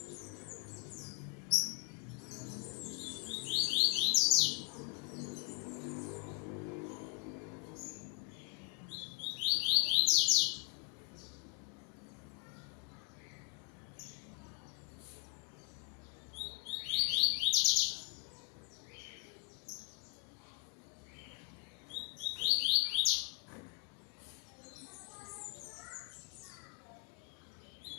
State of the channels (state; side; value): quieter; right; 37.6 dB